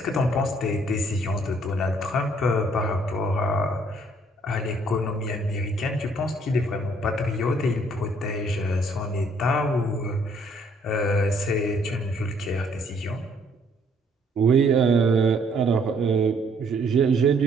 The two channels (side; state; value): both; normal; correlation 0.64